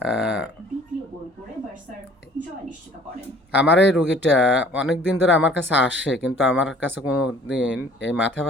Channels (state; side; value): normal; both; correlation 0.53